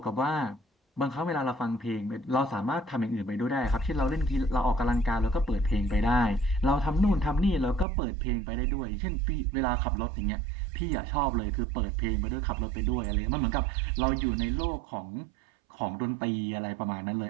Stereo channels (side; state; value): left; drops out; at 7.9 s